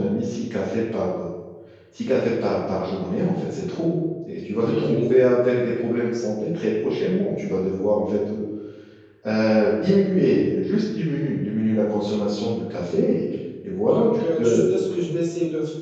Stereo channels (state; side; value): identical; both; correlation 1.00